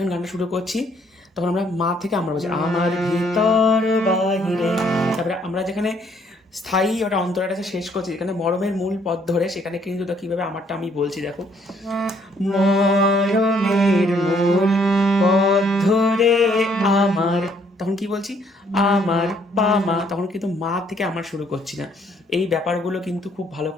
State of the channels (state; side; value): normal; both; correlation 0.66